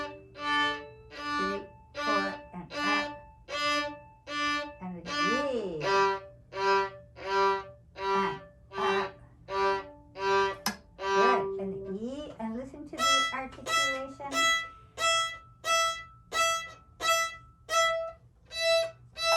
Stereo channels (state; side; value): identical; both; correlation 1.00